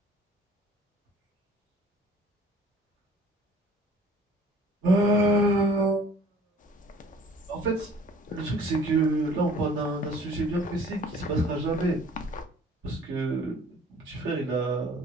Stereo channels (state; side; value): normal; both; correlation 0.52